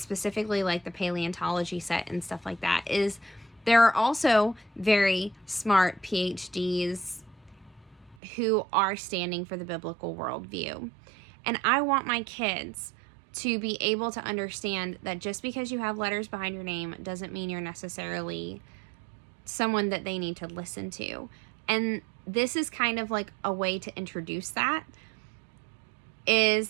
like the paleontology set and stuff like that, is there are also very smart PhDs who are standing for the biblical worldview. And I want my kids to be able to understand that just because you have letters behind your name doesn't mean you're necessarily someone that they need to listen to. And this is kind of like a way to introduce that,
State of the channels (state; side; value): drops out; left; at 8.2 s